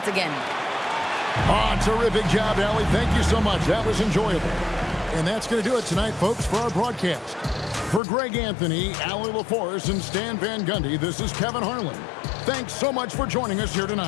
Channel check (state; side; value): drops out; right; at 8.0 s